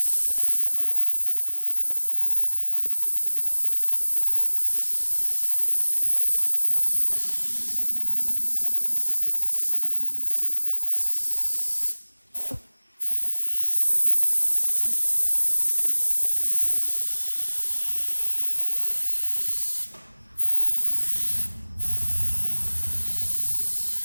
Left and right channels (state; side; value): inverted; both; correlation -1.00